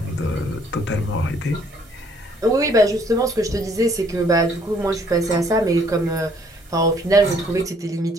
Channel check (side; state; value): both; normal; correlation 0.63